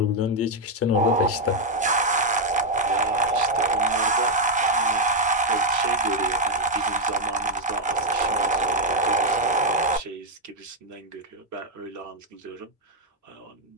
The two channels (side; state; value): both; normal; correlation 0.01